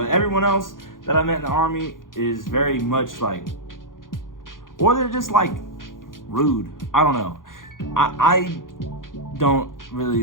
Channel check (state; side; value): late; right; 0.90 ms